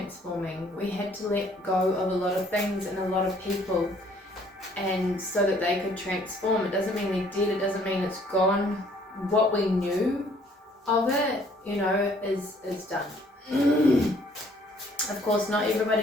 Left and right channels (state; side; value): normal; both; correlation 0.61